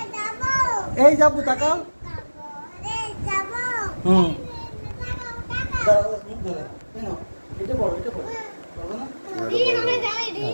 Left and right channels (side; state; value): both; inverted; correlation -1.00